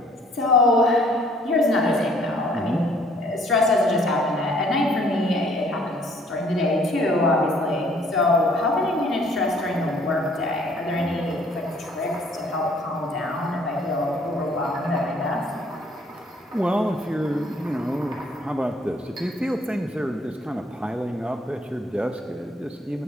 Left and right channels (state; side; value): normal; both; correlation 0.60